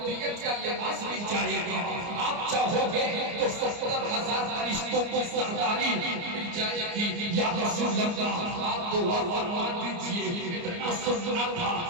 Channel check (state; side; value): late; left; 29 ms